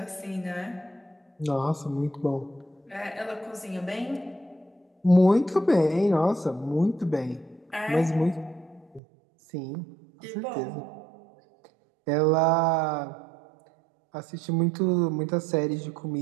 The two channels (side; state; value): left; drops out; at 9.0 s